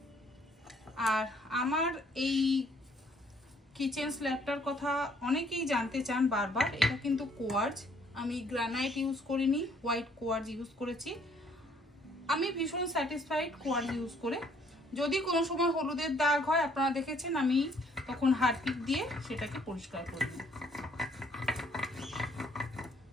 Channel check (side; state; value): both; normal; correlation 0.64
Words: আর আমার এই কিচেন স্ল্যাবটার কথা অনেকেই জানতে চান বারবার। এটা কিন্তু কোয়ার্জ, আমি গ্রানাইট ইউজ করিনি, হোয়াইট কোয়ার্জ ইউজ করেছি। আমি ভীষণ স্যাটিসফাইড কোয়ার্জ ইউজ করে। যদি কোনো সময় হলুদের দাগ হয়, আপনারা দেখেছেন, আমি তখন হারপিক দিয়ে সেটাকে পরিষ্কার করে নিই।